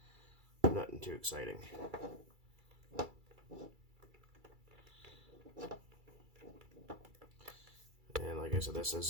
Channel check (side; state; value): left; late; 2.3 ms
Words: Nothing too exciting. And like I said, this